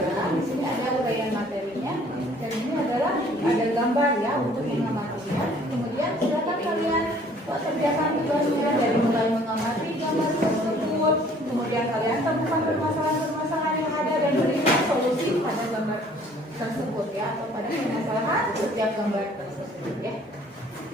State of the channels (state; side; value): normal; both; correlation 0.56